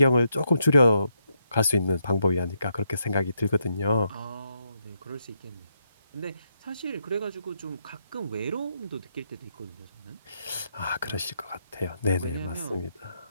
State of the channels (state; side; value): inverted; both; correlation -0.80